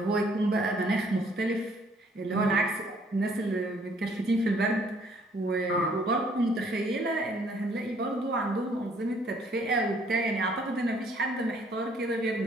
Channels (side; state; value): both; normal; correlation 0.63